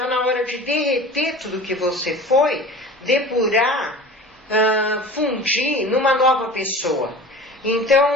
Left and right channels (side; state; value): both; normal; correlation 0.38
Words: na hora de derreter tudo que você foi, depurar, fundir numa nova pessoa.